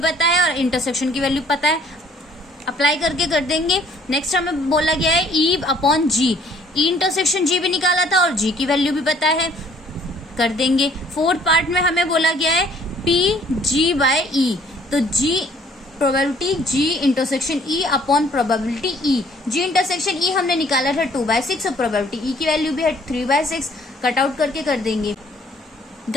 है और इंटरसेक्शन की वैल्यू पता है। अप्लाई करके कर देंगे। नेक्स्ट हमें बोला गया है ई अपॉन जी, ई इंटरसेक्शन जी भी निकाला था और जी की वैल्यू भी पता है, कर देंगे। फोर्थ पार्ट में हमें बोला गया है पी जी बाय ई, तो G probability G intersection E upon probability E. G intersection E हमने निकाला था 2/6 और प्रोबेबिलिटी ई की वैल्यू भी है 3/6। कट आउट करके कर देंगे।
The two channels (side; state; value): both; normal; correlation 0.59